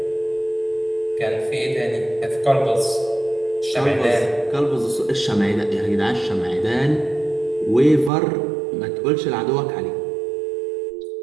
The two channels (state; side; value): drops out; left; at 8.1 s